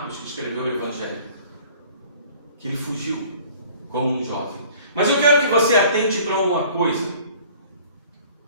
que escreveu o Evangelho, que ele fugiu como um jovem. Mas eu quero que você atente para uma coisa.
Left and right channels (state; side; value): inverted; both; correlation -0.51